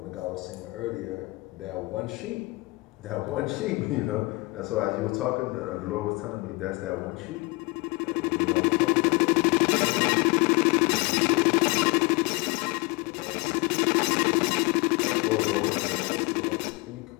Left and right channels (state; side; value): quieter; right; 24.7 dB